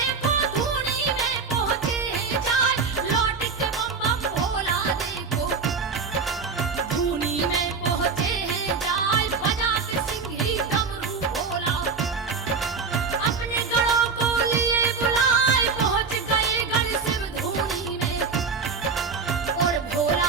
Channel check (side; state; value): left; quieter; 4.9 dB